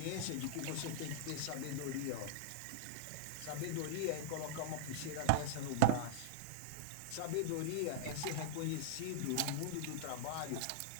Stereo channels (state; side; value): different; both; correlation -0.01